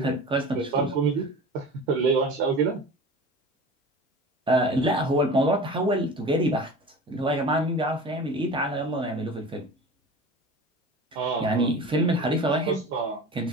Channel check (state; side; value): normal; both; correlation 0.37